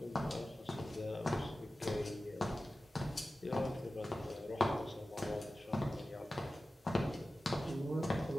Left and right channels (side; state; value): both; normal; correlation 0.95